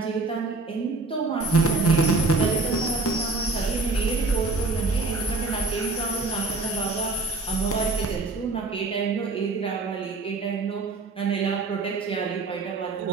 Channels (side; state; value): left; quieter; 3.6 dB